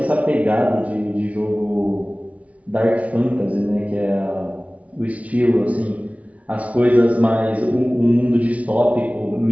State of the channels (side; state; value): left; late; 0.067 ms